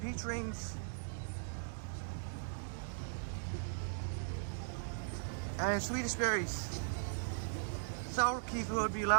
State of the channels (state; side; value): silent; left; digital silence